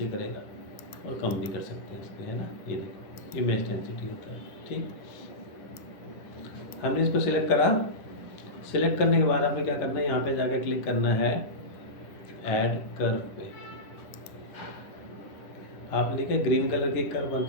करेगा, और कम भी कर सकते हैं इसके, है ना। ये देखो, ये मैच डेंसिटी होता है। ठीक, हमने इसको सिलेक्ट करा। सिलेक्ट करने के बाद हमें क्या करना है, यहाँ पे जाकर क्लिक करना है ऐड कर्व पे। आपने देखा ग्रीन कलर की कर्व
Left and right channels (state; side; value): late; right; 10 ms